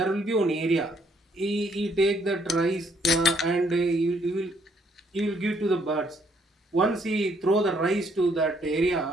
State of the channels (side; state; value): both; normal; correlation 0.68